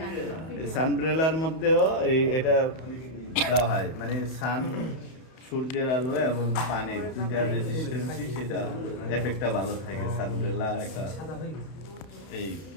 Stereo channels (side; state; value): right; late; 31 ms